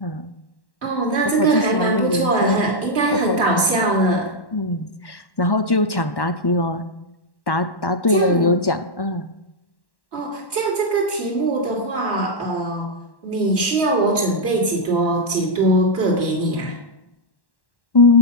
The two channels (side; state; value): right; late; 1.1 ms